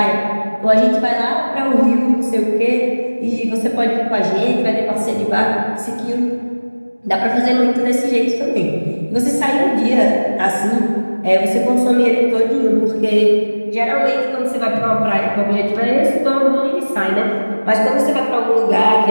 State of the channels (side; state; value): both; inverted; correlation -1.00